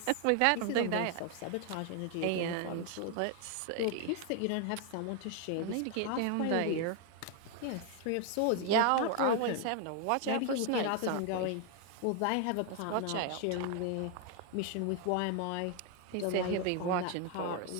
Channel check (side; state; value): both; different; correlation 0.00